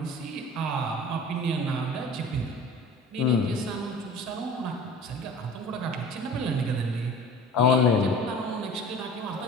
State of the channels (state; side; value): normal; both; correlation 0.41